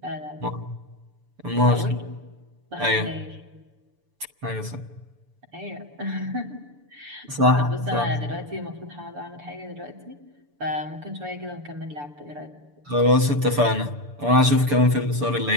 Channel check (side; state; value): left; late; 6.9 ms